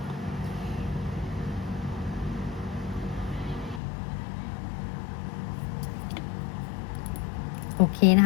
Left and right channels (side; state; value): right; drops out; at 3.8 s